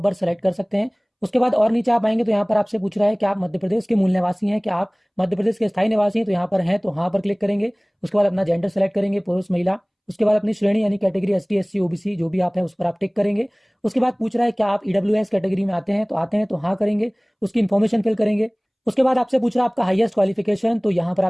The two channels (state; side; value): identical; both; correlation 1.00